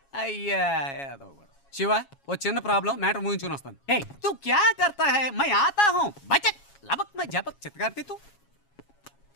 అయ్యా శివ ఓ చిన్న ప్రాబ్లం, మ్యాటర్ ముగించుకుని వస్తాను. హే తు క్యా కర్తా హై? మై ఆతా హూ బచక్ లబక్ మై జబక్ చిత్కార్తి తు.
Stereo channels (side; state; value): right; late; 7.3 ms